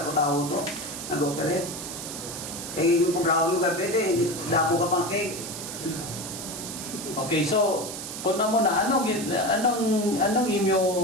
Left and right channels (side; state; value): right; noise; hiss, 8 dB below the sound